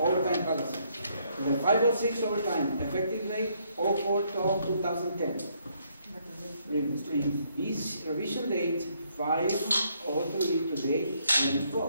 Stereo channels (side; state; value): both; inverted; correlation -0.71